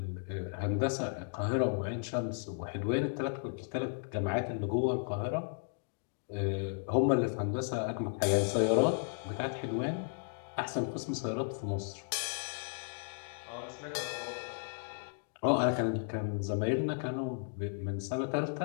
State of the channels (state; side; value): silent; right; digital silence